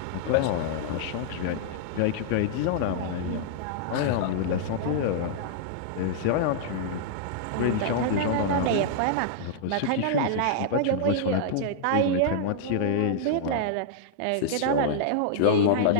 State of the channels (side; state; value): both; different; correlation -0.02